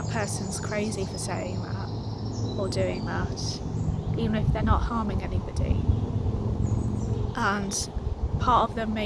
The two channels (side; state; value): both; identical; correlation 1.00